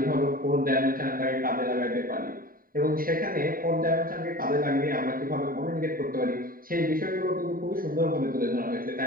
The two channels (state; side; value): late; left; 0.41 ms